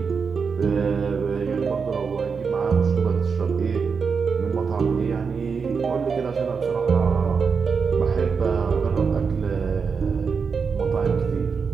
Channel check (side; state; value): left; quieter; 5.6 dB